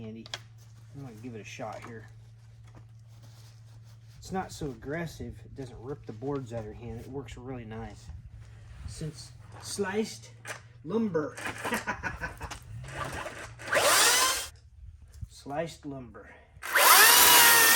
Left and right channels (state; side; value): identical; both; correlation 1.00